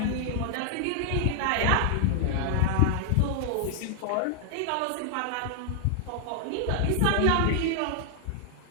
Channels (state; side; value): different; both; correlation 0.00